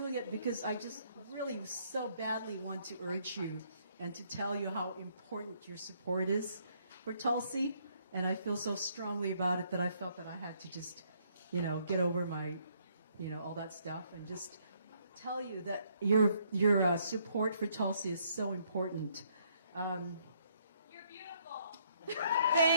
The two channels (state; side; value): inverted; both; correlation -0.69